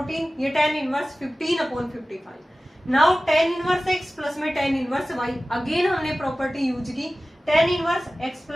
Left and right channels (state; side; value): normal; both; correlation 0.96